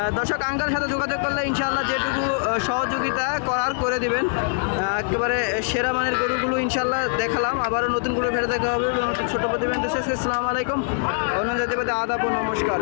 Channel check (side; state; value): right; silent; digital silence